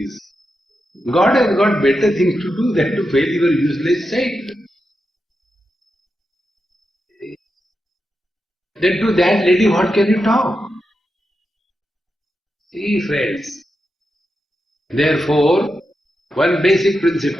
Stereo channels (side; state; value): both; normal; correlation 0.88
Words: God has got better things to do than to fail your useless child. Then to that lady, what can you talk? See, friends. Therefore, one basic